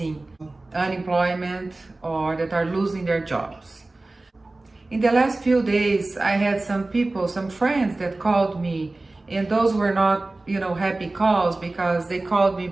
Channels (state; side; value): quieter; left; 3.0 dB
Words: unemployment or that are losing their jobs. In the last few days, I had some people, some friends that called me, and those were not, happy calls because they called me